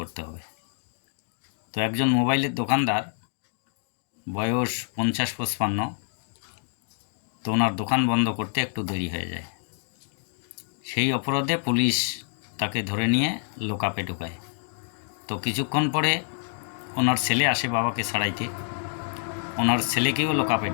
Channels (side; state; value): right; silent; digital silence